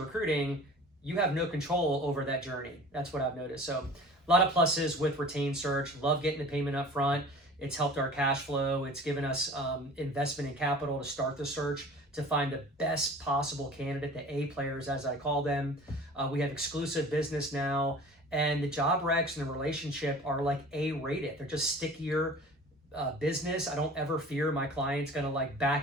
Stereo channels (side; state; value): both; normal; correlation 0.43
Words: you have no control over that journey. That's what I've noticed. So a lot of pluses with retained search. Love getting the payment up front. It's helped our cash flow. It's given us investment in capital to start the search, to find the best possible candidate, the A players, as I call them. We have exclusive business now, and the job recs and the relationship are like A-rated. They're just stickier business. I don't ever fear my client's gonna